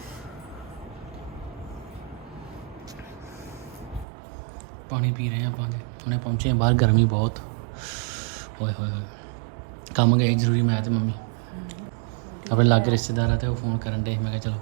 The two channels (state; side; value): drops out; left; at 4.0 s